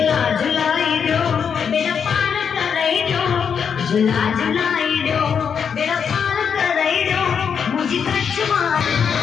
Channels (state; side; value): quieter; right; 7.0 dB